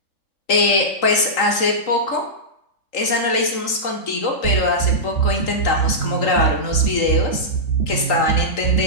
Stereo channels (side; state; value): right; late; 3.8 ms